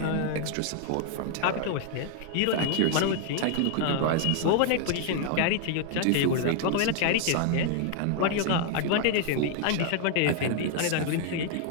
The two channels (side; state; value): both; different; correlation 0.00